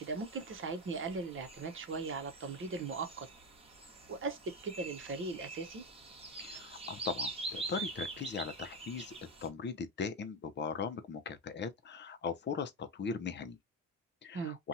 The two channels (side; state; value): both; normal; correlation 0.13